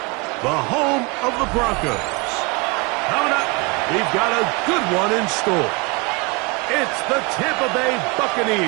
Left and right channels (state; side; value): quieter; left; 28.3 dB